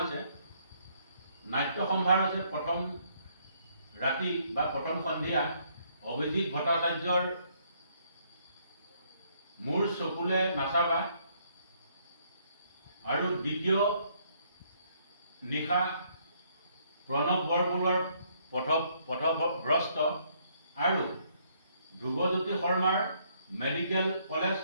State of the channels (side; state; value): both; inverted; correlation -0.68